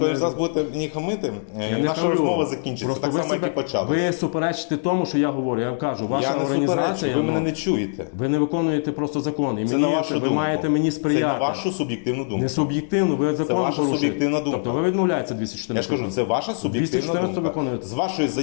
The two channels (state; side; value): silent; right; 61 dB below the other